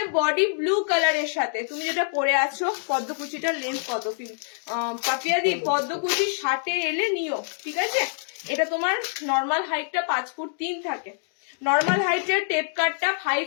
বডি ব্লু কালারের সাথে, তুমি যেটা পরে আছো পদ্মকুচিটার লেন্থ কত পাপিয়া দি, পদ্মকুচি 60-এ এলে নিও, ঠিক আছে। এটা তোমার নর্মাল হাইটটা 5 ফুট 3 থাকে, নর্মাল হাইটের টেপ কাটটা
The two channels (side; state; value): right; silent; digital silence